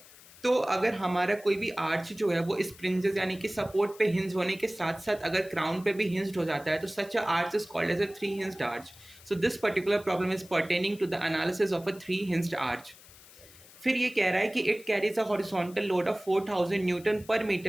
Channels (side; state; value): left; noise; hiss, 22 dB below the sound